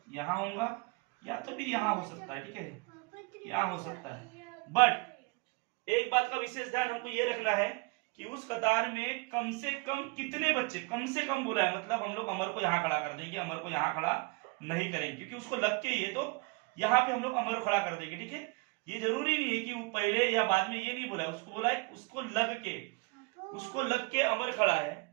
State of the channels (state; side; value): quieter; left; 28.6 dB